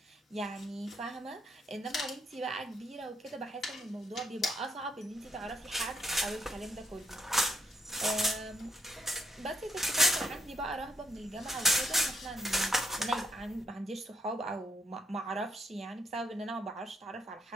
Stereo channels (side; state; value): both; normal; correlation 0.74